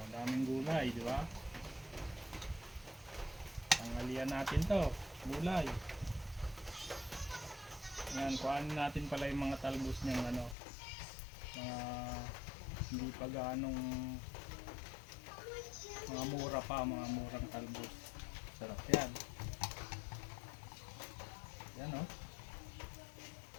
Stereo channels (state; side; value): drops out; right; at 10.6 s